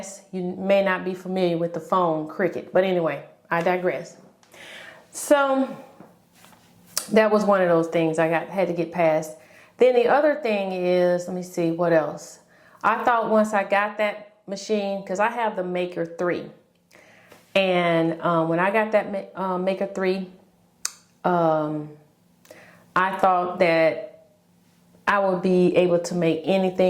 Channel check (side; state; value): both; identical; correlation 1.00